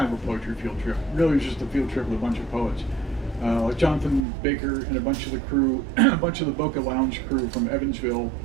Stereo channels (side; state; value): left; drops out; at 4.2 s